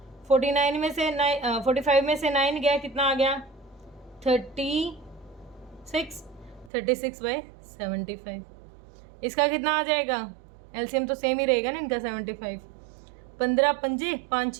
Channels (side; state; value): left; drops out; at 6.7 s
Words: 49 में से 45 में से 9 गया, कितना आ गया? 36 36/75। इसका कितना आ जाएगा? एलसीएम तो सेम ही रहेगा ना इनका 75। 15 पंजे 5